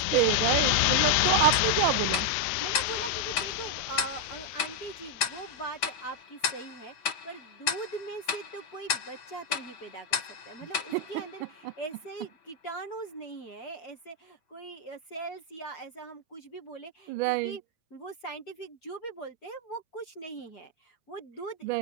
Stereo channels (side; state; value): right; late; 6.2 ms